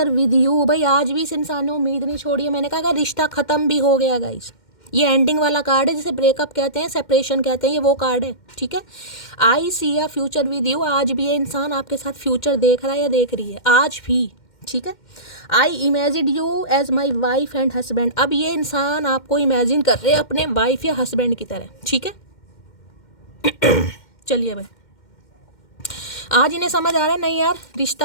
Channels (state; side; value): late; right; 2.1 ms